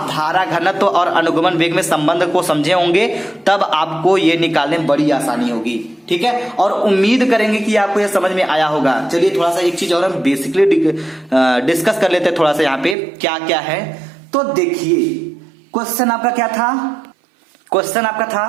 धारा घनत्व और अनुगमन वेग में संबंध को समझे होंगे, तब आपको ये निकालने में बड़ी आसानी होगी। ठीक है, और उम्मीद करेंगे कि आपको ये समझ में आया होगा। चलिए थोड़ा सा एक चीज और हम बेसिकली डिस्कस कर लेते हैं थोड़ा सा यहाँ पे क्या क्या है। तो देखिए क्वेश्चन आपका क्या था, क्वेश्चन आपका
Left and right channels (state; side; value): drops out; left; at 13.0 s